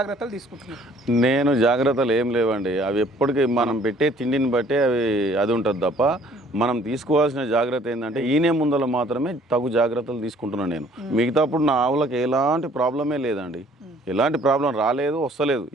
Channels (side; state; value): both; normal; correlation 0.58